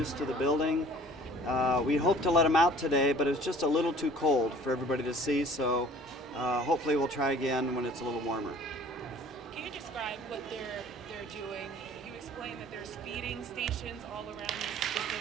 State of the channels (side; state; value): both; normal; correlation 0.50